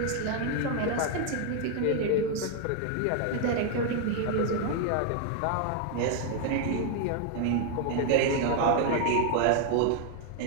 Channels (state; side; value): different; both; correlation 0.00